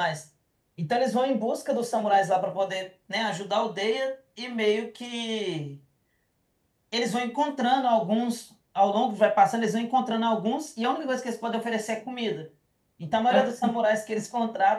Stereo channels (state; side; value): identical; both; correlation 1.00